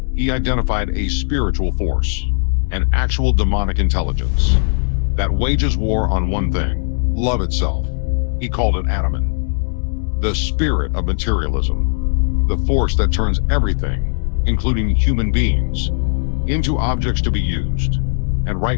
he identified a spiritual force, an actual demonic intelligence, that wages war on one thing, love itself. He called it Ahriman, the spirit of materialism, the force that turns everything, including human beings, into objects to be used. And right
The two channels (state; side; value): silent; right; digital silence